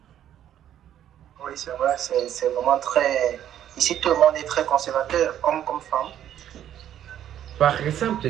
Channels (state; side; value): quieter; left; 10.9 dB